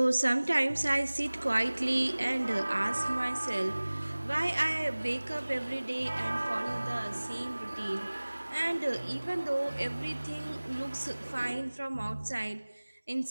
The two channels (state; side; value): inverted; both; correlation -1.00